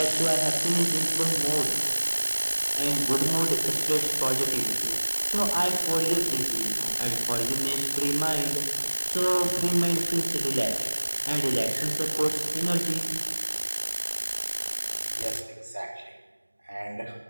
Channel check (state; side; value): inverted; both; correlation -1.00